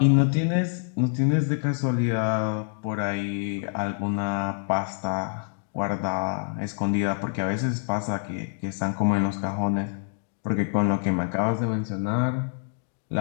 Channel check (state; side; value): silent; right; digital silence